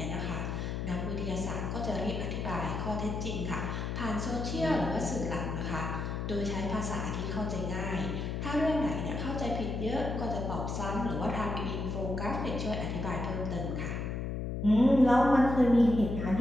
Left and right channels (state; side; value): noise; left; hum, 3 dB below the sound